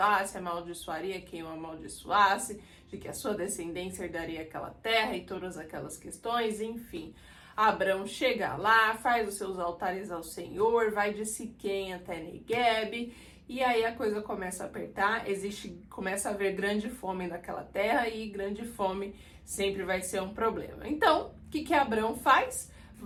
amaldiçoaria quem o amaldiçoasse, de que a sua descendência herdaria aquela terra e todas aquelas questões, enfim. Abrão chega lá, faz os seus altares ao Senhor, vai de Siquém até Negueb, e aí a coisa começa a apertar, começa a haver grande fome naquela terra, e grande fome sempre vai ser um problema. Então, o que Abrão faz?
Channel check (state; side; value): identical; both; correlation 1.00